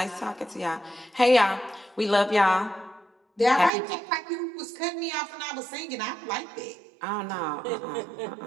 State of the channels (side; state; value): left; drops out; at 3.7 s